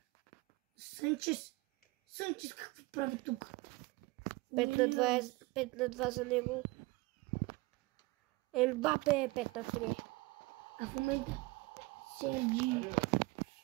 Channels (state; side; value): quieter; left; 22.5 dB